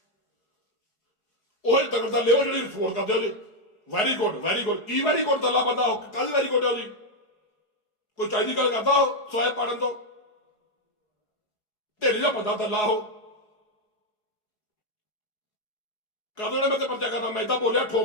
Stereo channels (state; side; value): late; right; 4.8 ms